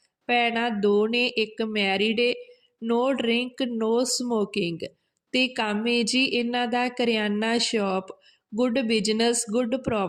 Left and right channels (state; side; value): identical; both; correlation 1.00